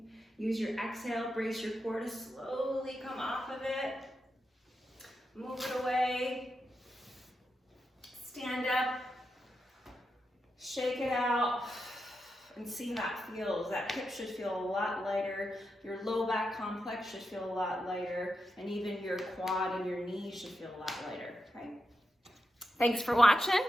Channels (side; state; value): both; normal; correlation 0.87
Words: Use your exhale, brace your core to slowly come off of it. Move it away. Stand up. Shake it out. And see how that feels. That hip should feel a lot lighter. Your low back complex should feel a lot lighter. And even your quad and your knees should feel a lot lighter, right? Thanks for watching.